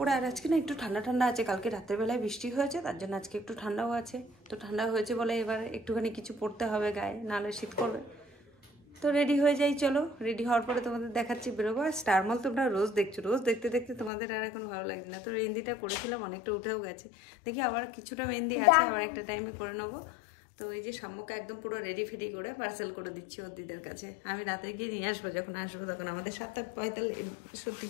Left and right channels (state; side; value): drops out; right; at 14.1 s